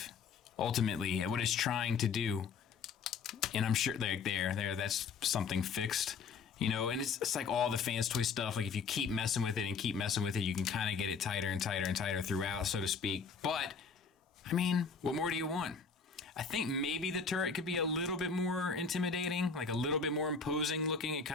ultimately, at what it's trying to do. And I'm sure there, that's something fixed. You know, and it's like all the Fanstoys stuff. Like if you keep messing with it and keep messing with it, you can kind of get it tighter and tighter and tighter throughout, so to speak. But, I mean, what more do you want? I think maybe the turret could be a little bit more intimidating, like a little bit more imposing looking. It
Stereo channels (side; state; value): right; quieter; 5.5 dB